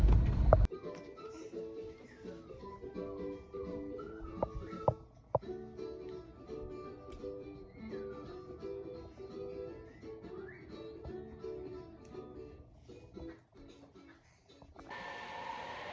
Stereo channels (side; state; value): both; identical; correlation 1.00